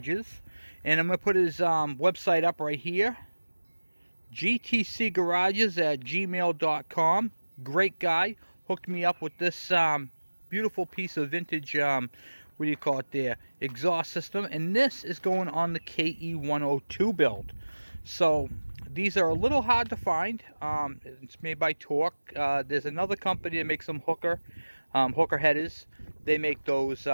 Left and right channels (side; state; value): both; inverted; correlation -1.00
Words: and I'm going to put his website up right here, gtcgarages@gmail.com. Great guy, hooked me up with this beautiful piece of vintage, exhaust system, and this is going on the KE102 build. So these are a little hard to find. It's made by Torque. There's another company that makes some hooker headers. They make those